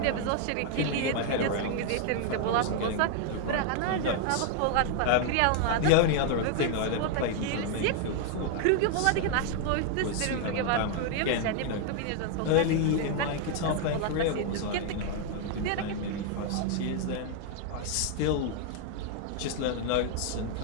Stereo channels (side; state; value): both; different; correlation 0.00